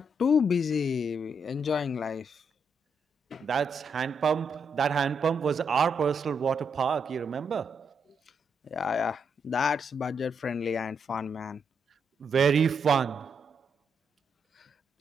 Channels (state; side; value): normal; both; correlation 0.79